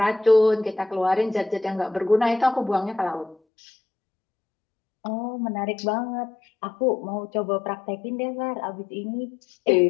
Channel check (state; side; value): drops out; right; at 3.4 s